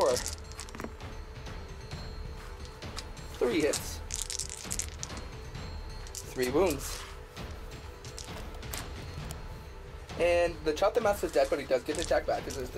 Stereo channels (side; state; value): both; identical; correlation 1.00